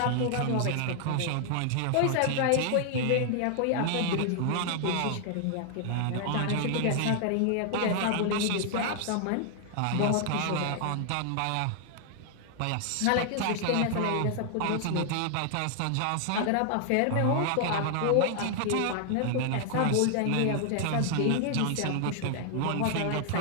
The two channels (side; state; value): both; different; correlation 0.00